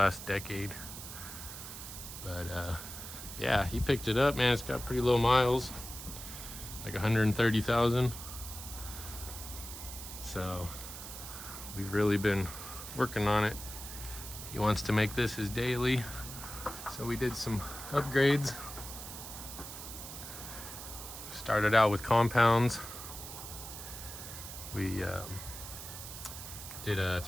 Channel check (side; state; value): right; noise; hiss, 10 dB below the sound